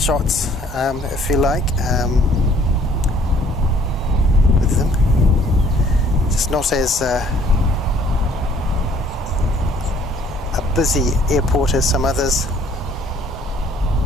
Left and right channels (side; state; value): both; normal; correlation 0.59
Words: if you like, with them. Just not as a busy airport as some others.